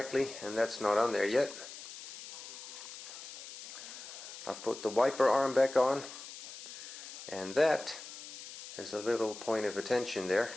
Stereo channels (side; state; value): left; noise; hiss, 12 dB below the sound